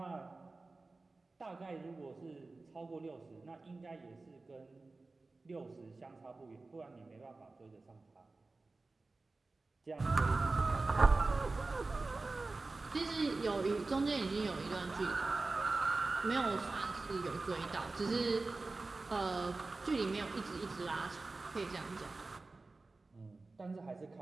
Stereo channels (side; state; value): left; quieter; 3.5 dB